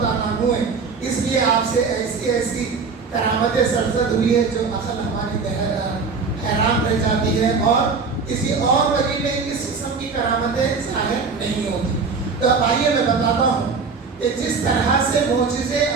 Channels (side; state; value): left; quieter; 4.9 dB